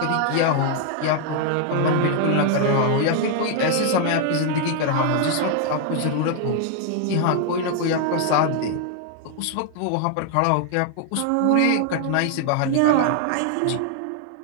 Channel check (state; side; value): different; both; correlation 0.00